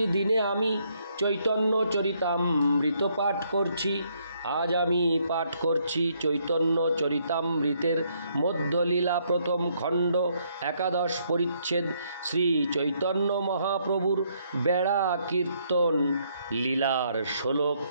দিনে আমি চৈতন্য চরিতামৃত পাঠ করছি। আজ আমি পাঠ করছি চৈতন্য চরিতামৃতের মধ্যলীলা প্রথম খণ্ড, একাদশ পরিচ্ছেদ, শ্রী চৈতন্য মহাপ্রভুর বেড়া কীর্তন লীলার শ্লোক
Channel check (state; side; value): inverted; both; correlation -0.71